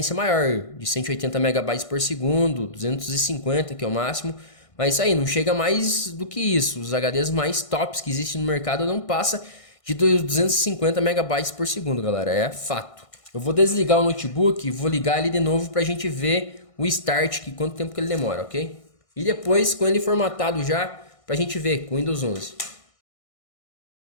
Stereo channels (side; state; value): right; late; 1.6 ms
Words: maior, de 180 MB por segundo, 250, que é o máximo. Mas isso aí, não chega mais do que isso. Os HDs mais tops que existem no mercado não passa de 250 MB por segundo, galera. É fato. Eu vou desligar o notebook e vou ligar ele de novo para a gente ver o start, que quanto tempo que ele demora, ok? E depois, com ele formatado já, para a gente ver com o Windows 11.